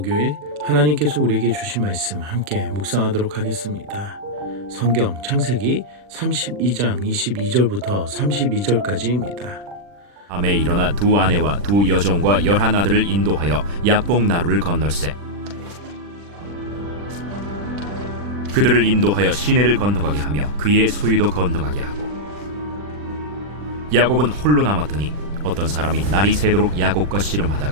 하나님께서 우리에게 주신 말씀 함께 묵상하도록 하겠습니다. 성경 창세기 32장 22절부터 32절까지입니다. 밤에 일어나 두 아내와 두 여종과 11아들을 인도하여 야복 나루를 건널세. 그들을 인도하여 시내를 건너가게 하며 그의 소유도 건너가게 하고, 야곱은 홀로 남았더니 어떤 사람이 날이 새도록 야곱과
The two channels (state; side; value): late; left; 40 ms